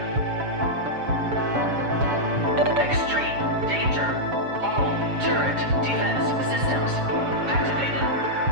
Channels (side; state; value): left; late; 7.1 ms